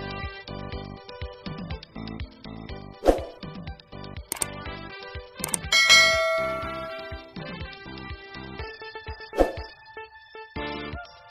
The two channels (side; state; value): both; identical; correlation 1.00